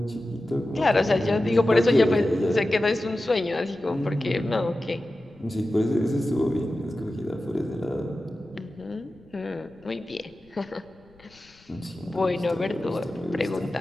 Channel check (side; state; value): left; noise; rumble, 29 dB below the sound